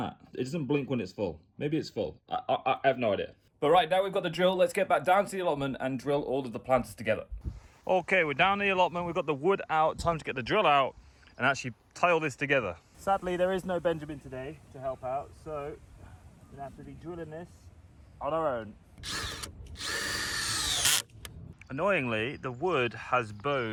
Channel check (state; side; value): identical; both; correlation 1.00